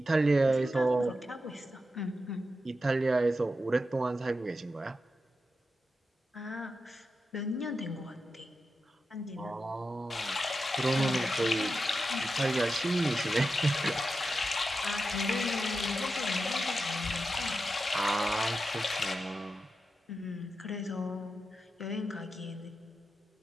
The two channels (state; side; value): normal; both; correlation 0.90